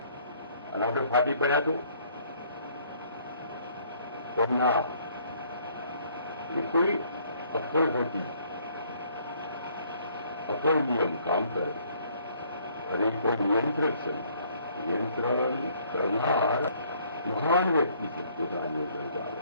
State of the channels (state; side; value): inverted; both; correlation -0.62